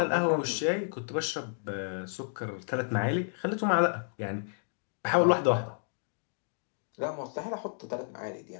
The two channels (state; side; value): silent; right; digital silence